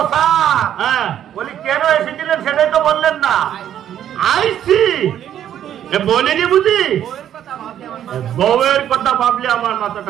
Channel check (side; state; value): left; quieter; 10.5 dB